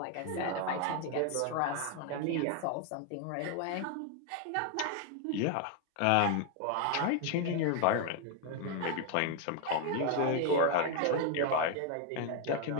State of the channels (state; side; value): different; both; correlation 0.01